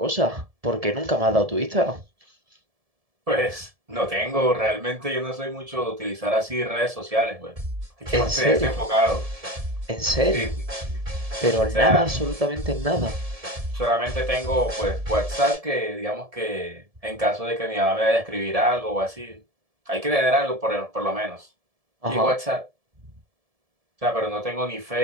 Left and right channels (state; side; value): late; left; 1.7 ms